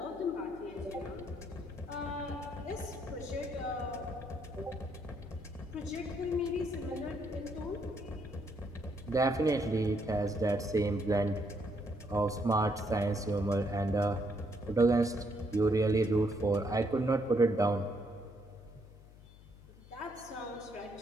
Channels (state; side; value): noise; left; hum, 21 dB below the sound